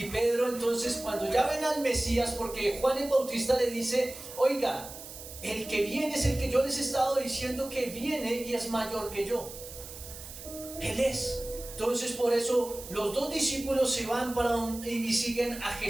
Pedro entonces, cuando ya ven al Mesías, porque Juan el Bautista le dice, oiga, el que viene es el que yo les he estado diciendo que viene y es mayor que yo. Él es. Entonces por eso los dos discípulos se van y siguen a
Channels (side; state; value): right; noise; hiss, 13 dB below the sound